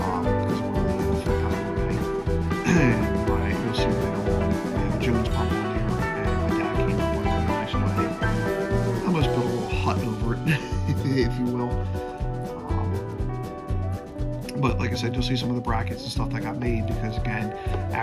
of where the flip pedal would be. And you'll see later on, we have a Jones pump on here, and my dad came up with a really nice way. Almost built a little hut over it, if you will. But like I said, you'll see some of the brackets and stuff that got made, because again,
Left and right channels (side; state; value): both; identical; correlation 1.00